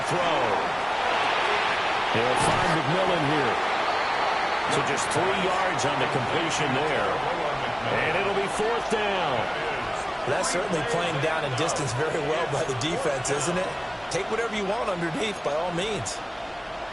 throw. They'll find McMillan here. So just 3 yards on the completion there. And it'll be 4th down. That's certainly playing down and distance very well by the defense, isn't it? Take whatever you want underneath, by all means.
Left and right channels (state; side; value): identical; both; correlation 1.00